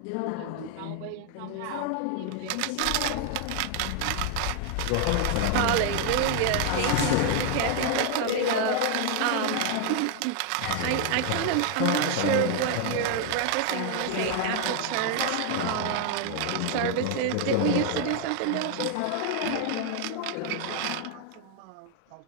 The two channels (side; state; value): both; different; correlation 0.00